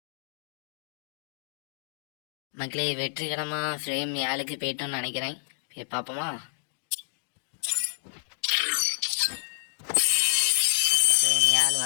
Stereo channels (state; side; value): silent; right; digital silence